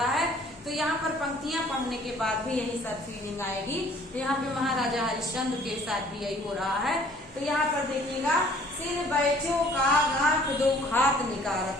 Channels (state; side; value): normal; both; correlation 0.55